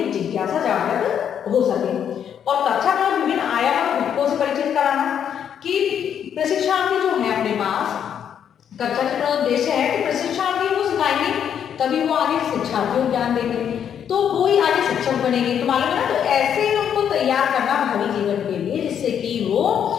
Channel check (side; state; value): right; quieter; 8.7 dB